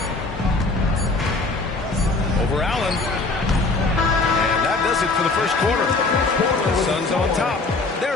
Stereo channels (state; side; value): quieter; right; 3.6 dB